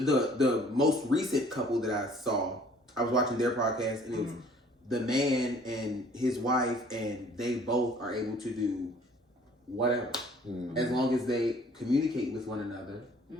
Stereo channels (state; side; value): normal; both; correlation 0.55